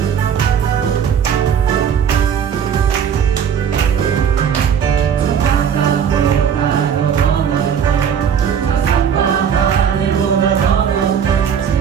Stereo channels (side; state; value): left; quieter; 7.9 dB